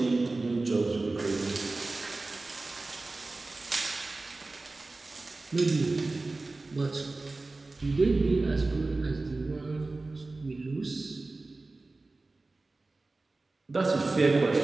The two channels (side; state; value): left; quieter; 3.3 dB